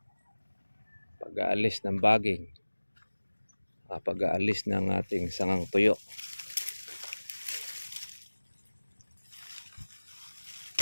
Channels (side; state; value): both; inverted; correlation -1.00